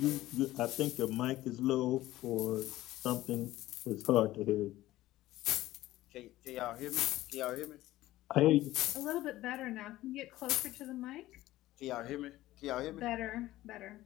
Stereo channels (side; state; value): right; quieter; 16.1 dB